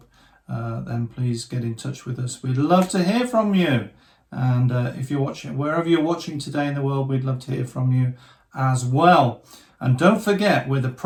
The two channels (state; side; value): identical; both; correlation 1.00